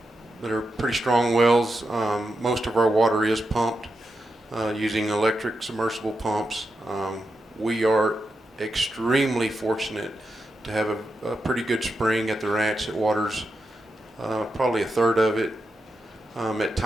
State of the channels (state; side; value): normal; both; correlation 0.87